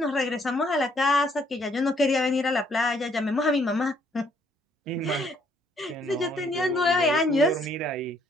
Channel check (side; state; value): both; normal; correlation 0.67